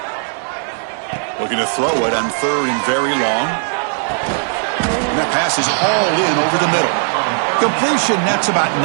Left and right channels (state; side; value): silent; left; 65 dB below the other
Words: Looking to throw it on 3rd and very long. And that pass is hauled in over the middle. Completion nets about